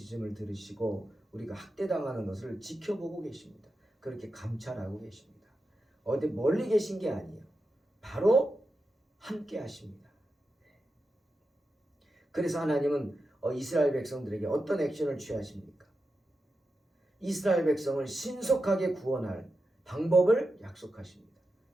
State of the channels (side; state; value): both; normal; correlation 0.89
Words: 들으시고 우리가 학대당하는 것을 지켜보고 계십니다. 그렇게 감찰하고 계십니다. 어디 멀리 계신 게 아니에요. 바로 함께 하십니다. 그래서 하나님은 이스라엘 백성들에게 어떤 액션을 취하십니까? 이스라엘 백성을 신속하게 구원할 방법을 약속하십니다.